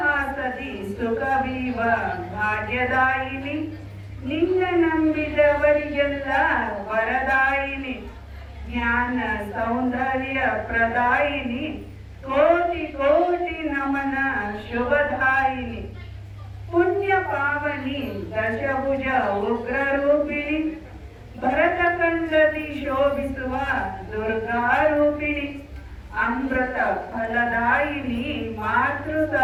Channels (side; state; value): both; identical; correlation 1.00